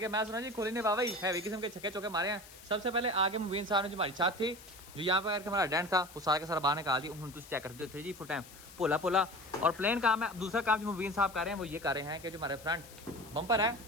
मैं सुना जी कोहली ने वाह हैवी किस्म के छक्के चौके मारे हैं। सबसे पहले आगे मुबीन साहब ने जो हमारी छत थी, जो यहाँ पर हमारा डेंट था, वो सारा का सारा बाहर निकाल दिया। तुम चेक करते थे जी फुल टाइम पोला पोला और प्लेन काम है। दूसरा काम जो मुबीन साहब कर रहे हैं वो ये कर रहे हैं कि जो हमारे फ्रंट बम्पर है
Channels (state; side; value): noise; left; hiss, 19 dB below the sound